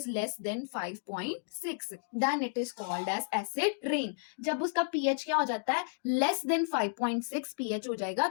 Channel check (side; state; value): right; silent; digital silence